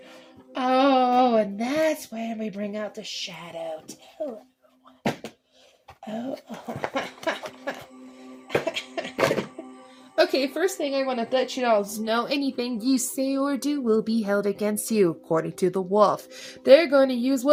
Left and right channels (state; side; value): identical; both; correlation 1.00